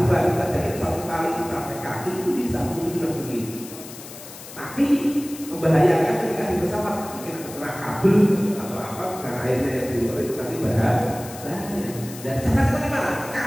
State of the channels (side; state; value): left; noise; hiss, 15 dB below the sound